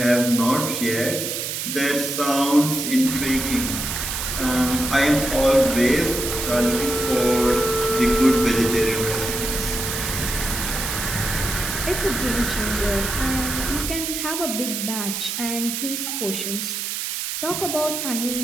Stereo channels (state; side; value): noise; right; hiss, 3 dB below the sound